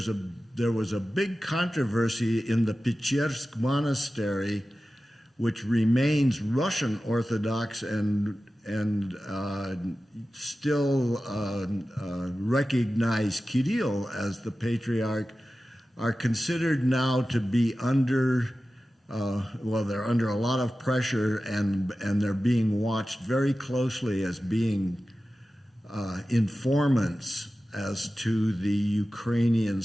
was a big controversy in the Pechirsk Monastery, which remains Russian Orthodox and still recognize Kirill as the patriarch, are considered now to be under, they're under a lot of pressure, and they're being watched very closely as being informants as to the Ukrainian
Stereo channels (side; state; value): both; normal; correlation 0.95